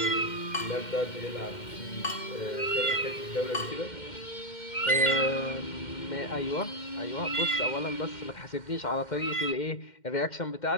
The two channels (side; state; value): right; late; 2.1 ms